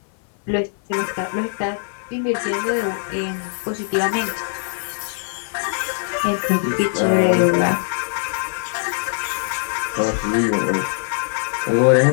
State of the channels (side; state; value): right; silent; 57 dB below the other